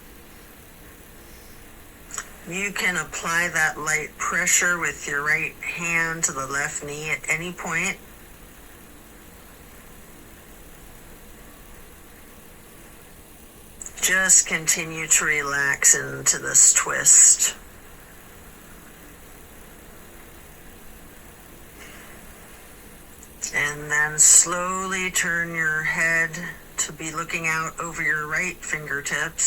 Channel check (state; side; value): identical; both; correlation 1.00